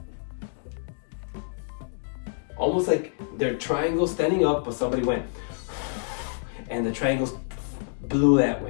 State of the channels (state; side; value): silent; right; digital silence